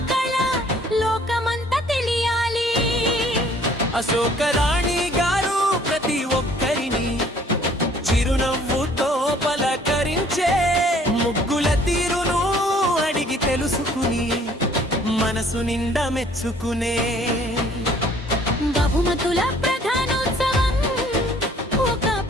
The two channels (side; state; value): both; normal; correlation 0.57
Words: కళ లోకమంతా తెలియాలి. అశోకరాణి గారు ప్రతి ఒక్కరిని చిరునవ్వుతో పలకరించే. ముగ్గుల తీరును అడిగి తెలుసుకుని మనసు నిండా మెచ్చుకునే. బహుమతుల ప్రధానోత్సవం ఒక